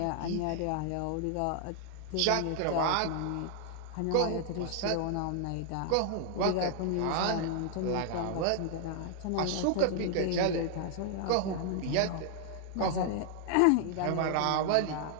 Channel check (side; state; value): both; different; correlation 0.00